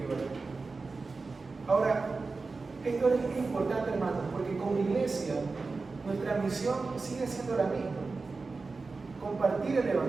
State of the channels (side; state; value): left; quieter; 4.0 dB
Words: oren. Ahora, esto es importante, hermanos, porque como iglesia nuestra misión sigue siendo la misma: compartir el